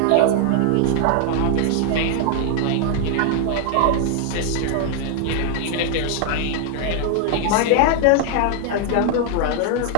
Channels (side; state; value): both; different; correlation 0.00